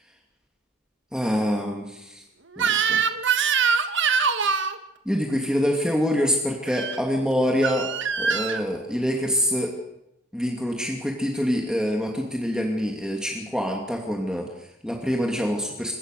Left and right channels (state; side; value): normal; both; correlation 0.63